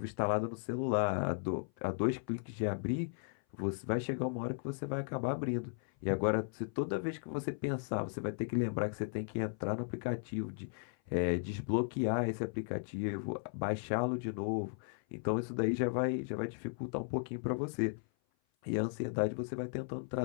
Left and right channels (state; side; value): silent; right; 54 dB below the other